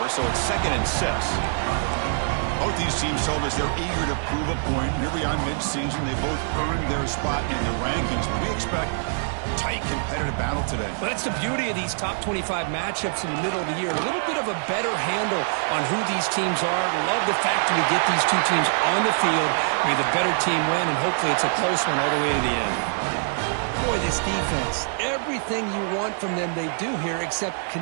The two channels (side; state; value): left; silent; digital silence